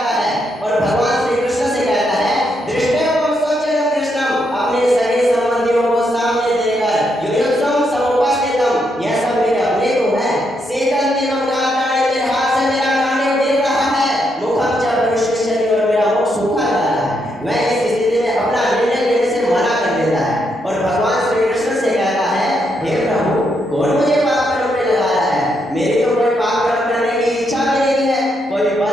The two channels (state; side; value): normal; both; correlation 0.79